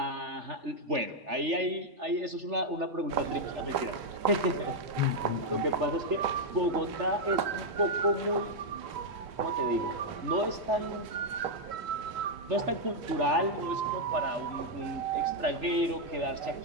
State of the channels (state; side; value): late; left; 3.3 ms